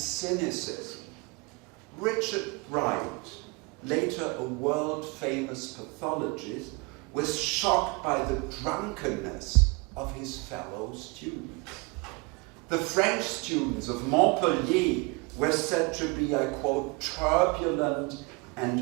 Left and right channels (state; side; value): quieter; left; 28.7 dB